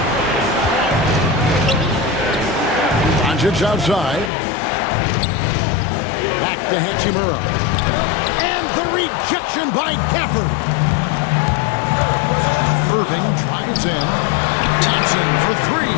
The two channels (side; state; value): right; drops out; at 4.3 s